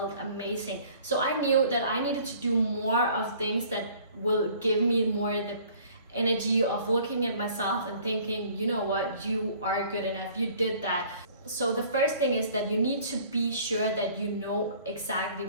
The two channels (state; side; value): inverted; both; correlation -0.53